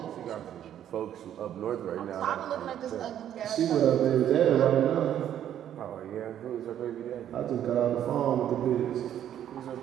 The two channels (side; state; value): left; quieter; 10.6 dB